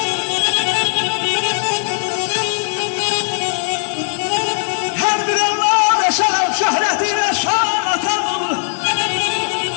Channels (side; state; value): right; silent; digital silence